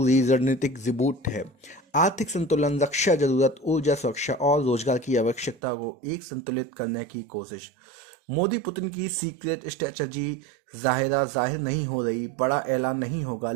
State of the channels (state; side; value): drops out; left; at 5.6 s